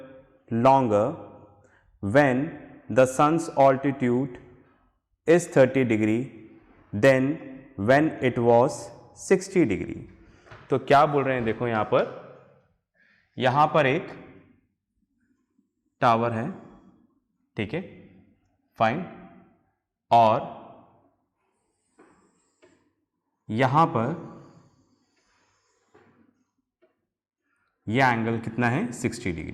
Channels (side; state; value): both; identical; correlation 1.00